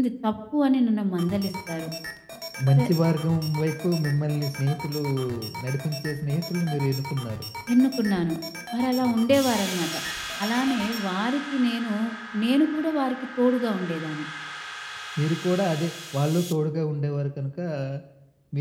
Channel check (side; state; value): both; identical; correlation 1.00